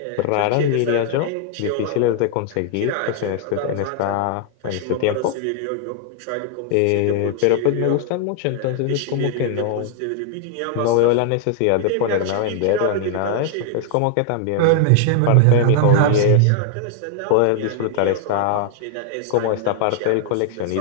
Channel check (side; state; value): both; different; correlation 0.00